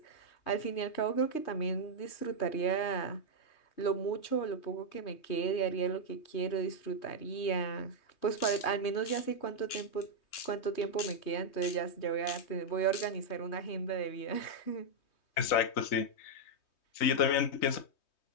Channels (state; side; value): late; right; 3.2 ms